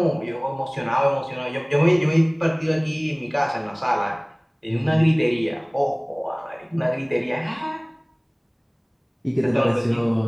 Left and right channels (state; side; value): identical; both; correlation 1.00